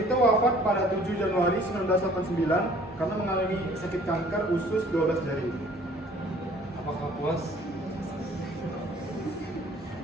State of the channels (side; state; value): both; normal; correlation 0.54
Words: wafat pada 7 Januari 1989 karena mengalami sakit kanker usus 12 jari. Apakah puas?